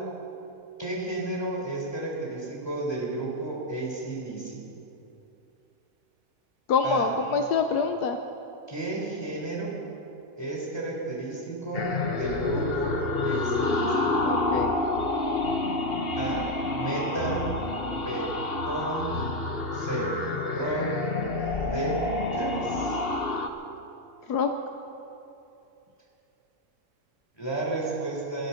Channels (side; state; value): both; normal; correlation 0.03